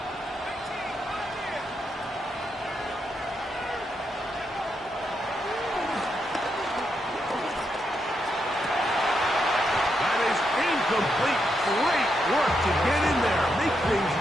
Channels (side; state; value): both; normal; correlation 0.82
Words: Complete. Great work to get in there. Make things